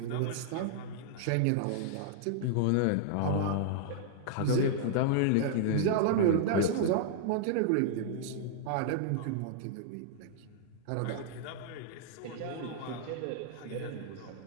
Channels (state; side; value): different; both; correlation -0.01